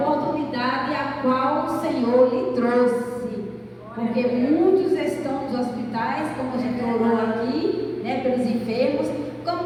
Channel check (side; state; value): both; identical; correlation 1.00